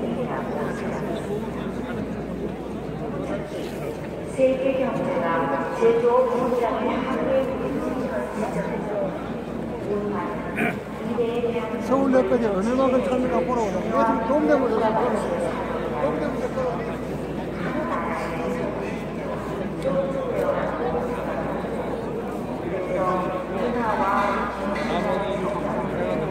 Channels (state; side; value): identical; both; correlation 1.00